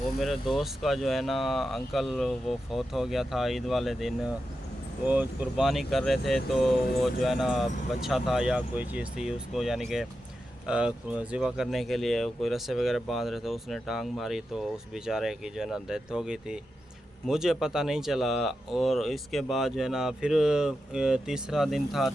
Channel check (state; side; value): normal; both; correlation 0.89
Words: मेरे दोस्त का जो है ना अंकल, वो फौत हो गया था ईद वाले दिन। वो कुर्बानी कर रहे थे, तो वो जो है ना बच्चा था या कोई चीज़ थी उसको, यानी कि ज़िबा करने के लिए कोई रस्से वगैरह बांध रहे थे, उसने टांग मारी तो उस बेचारे की जो है ना डेथ हो गई थी। मुझे पता नहीं चला। और इसके बाद जो है ना फिर तीसरा दिन था,